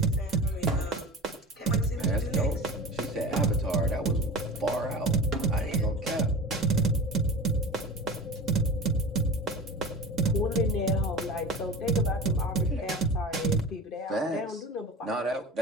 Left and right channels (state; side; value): normal; both; correlation 0.33